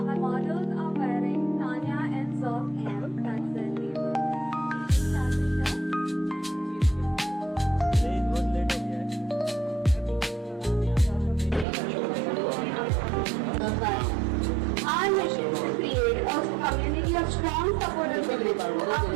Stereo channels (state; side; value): drops out; left; at 11.7 s